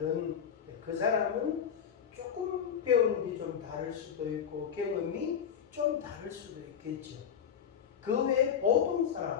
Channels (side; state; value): right; quieter; 8.0 dB